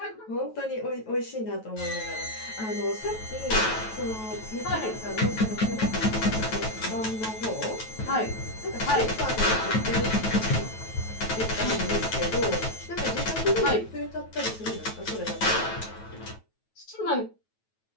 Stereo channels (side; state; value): right; late; 9.2 ms